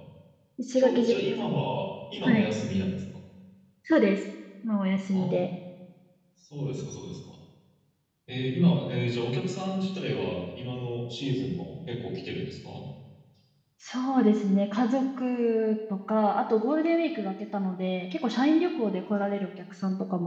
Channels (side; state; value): both; identical; correlation 1.00